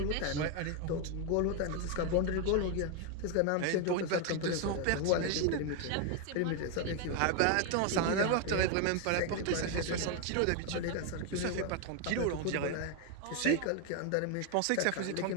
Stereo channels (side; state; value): both; different; correlation 0.01